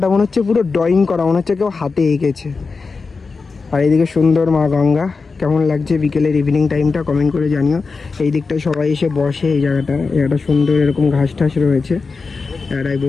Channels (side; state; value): right; quieter; 4.5 dB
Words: মনে হচ্ছে পুরো ড্রয়িং করা, মনে হচ্ছে কেউ হাতে এঁকেছে। আর এইদিকে সুন্দর মা গঙ্গা, কেমন লাগছে বিকেলের ইভিনিং টাইমটা কমেন্ট করে জানিও। এই দিকটায় সবাই এসে বসে, এই জায়গাটা সুন্দর, এরকম ঘাস টাস রয়েছে, এরাই